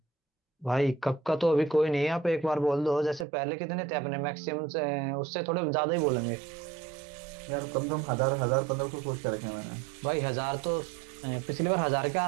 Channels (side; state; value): left; drops out; at 3.2 s